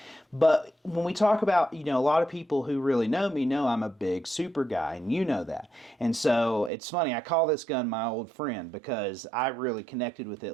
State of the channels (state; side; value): drops out; left; at 6.7 s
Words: But when we talk about, you know, a lot of people who really know me know I'm a big Super guy, and you know that. And so it's funny, I call this gun my old friend because I really connected with it